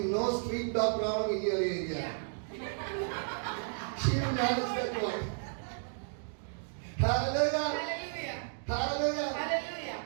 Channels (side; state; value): left; silent; digital silence